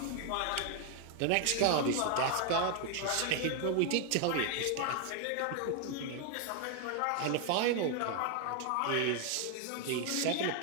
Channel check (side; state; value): both; different; correlation 0.00